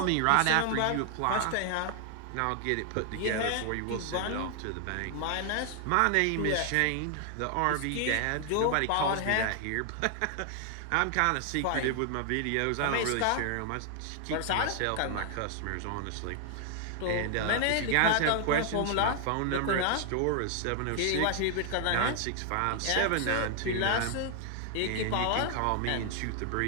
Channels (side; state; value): both; different; correlation 0.00